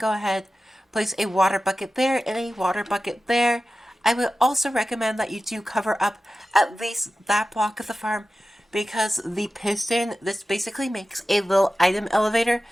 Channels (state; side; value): normal; both; correlation 0.94